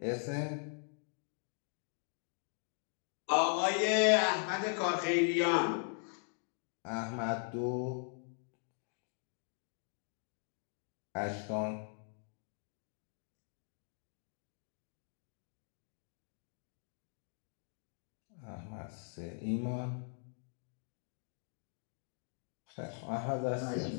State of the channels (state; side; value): silent; right; 51 dB below the other